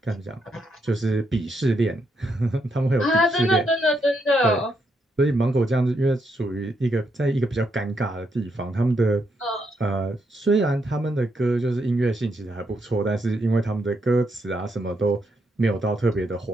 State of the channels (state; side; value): normal; both; correlation 0.79